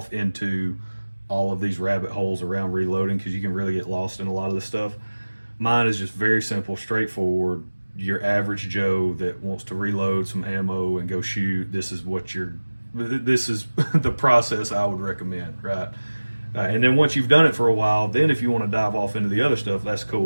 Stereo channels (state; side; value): inverted; both; correlation -1.00